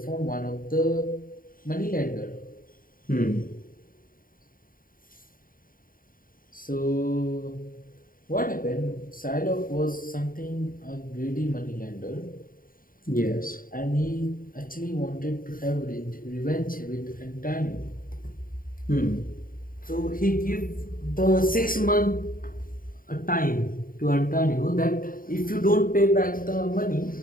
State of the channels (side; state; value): right; late; 0.41 ms